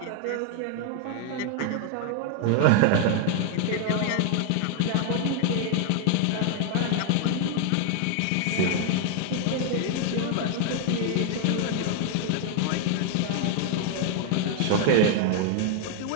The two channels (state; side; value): different; both; correlation 0.00